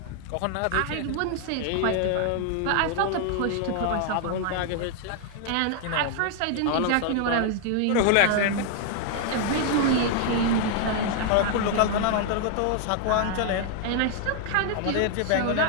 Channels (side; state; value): both; different; correlation 0.00